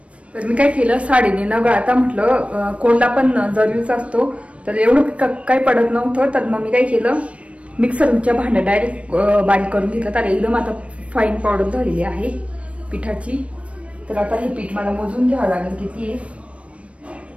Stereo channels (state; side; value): late; left; 0.062 ms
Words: तर मी काय केलं, साडीने न गाळता म्हटलं कोंडा पण जरुरीचा असतो, तर एवढं काही पडत नव्हतं. तर मग मी काय केलं, मिक्सरच्या भांड्यात डायरेक्ट बारीक करून घेतलं. तर एकदम आता फाईन पावडर झालेली आहे पिठाची. तर आता हे पीठ मला मोजून घ्यावं लागेल किती आहे,